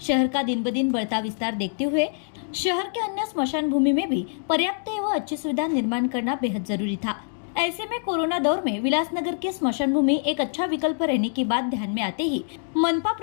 शहर का दिन ब दिन बढ़ता विस्तार देखते हुए शहर के अन्य स्मशान भूमि में भी पर्याप्त एवं अच्छी सुविधा निर्माण करना बेहद जरूरी था। ऐसे में कोरोना दौर में विलासनगर के स्मशान भूमि एक अच्छा विकल्प रहने की बात ध्यान में आते ही मनपा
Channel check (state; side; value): silent; right; digital silence